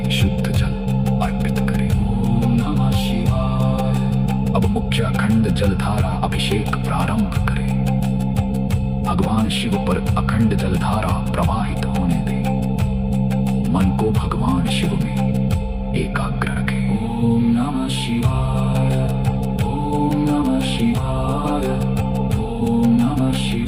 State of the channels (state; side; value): identical; both; correlation 1.00